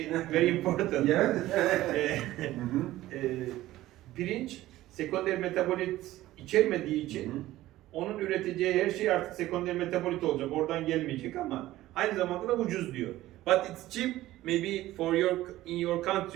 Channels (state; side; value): quieter; left; 15.7 dB